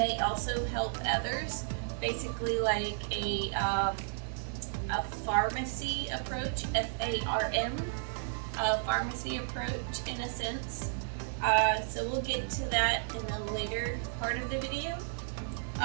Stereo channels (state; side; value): silent; left; digital silence